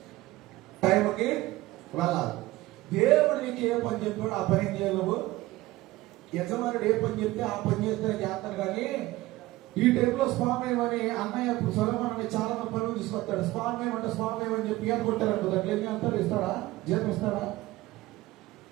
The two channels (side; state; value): left; quieter; 18.2 dB